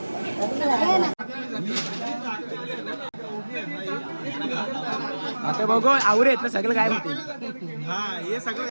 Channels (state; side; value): inverted; both; correlation -1.00